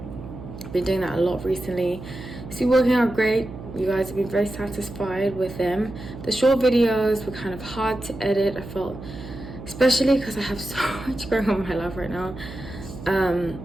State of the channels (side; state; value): right; noise; hum, 13 dB below the sound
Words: I've been doing that a lot recently. It's been working out great. You guys have been very satisfied with them. The short videos were kind of hard to edit, I felt, especially because I have so much going on in my life right now.